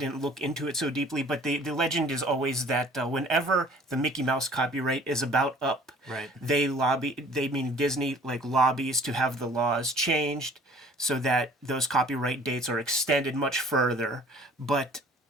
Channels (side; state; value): both; normal; correlation 0.51